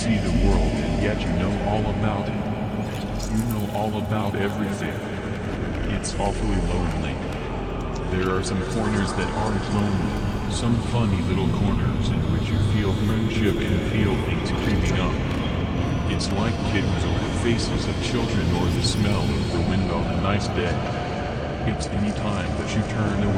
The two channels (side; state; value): both; identical; correlation 1.00